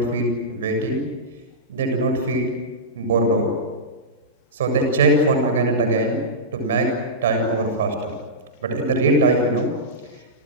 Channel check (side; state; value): both; normal; correlation -0.15